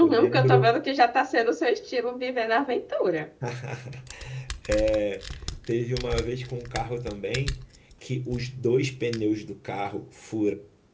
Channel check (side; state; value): both; identical; correlation 1.00